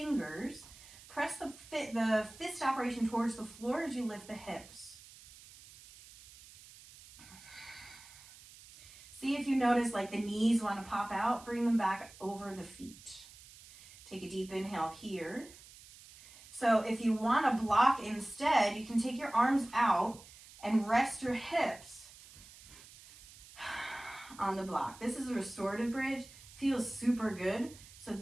Press the fist operation towards the floor as you lift the hips. See if you notice like the knees want to pop out. Bring them back over the feet. Take a deep inhale here. So if you want to block instead, you can take your arms out and rest your hips on the block. This is a restorative bridge. Feels super good. So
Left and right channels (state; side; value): noise; right; hiss, 20 dB below the sound